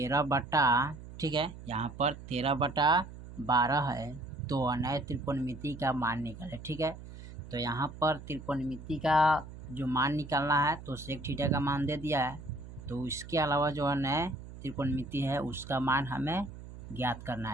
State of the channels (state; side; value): noise; right; hum, 14 dB below the sound